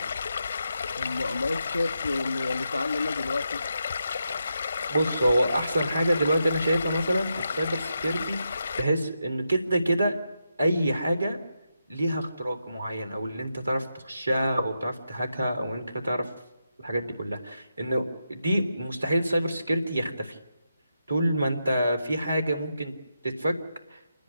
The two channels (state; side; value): inverted; both; correlation -0.85